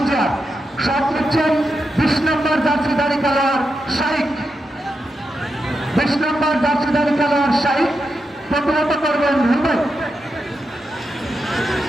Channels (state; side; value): normal; both; correlation 0.87